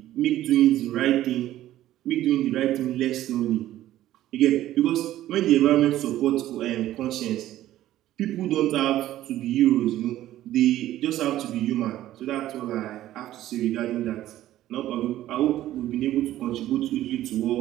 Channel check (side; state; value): left; quieter; 13.8 dB